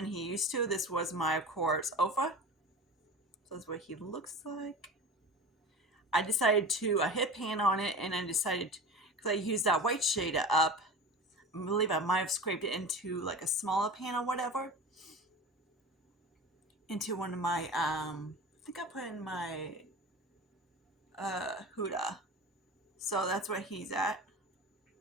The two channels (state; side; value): normal; both; correlation 0.32